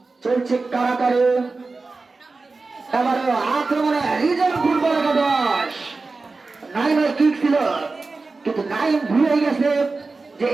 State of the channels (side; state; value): left; quieter; 3.8 dB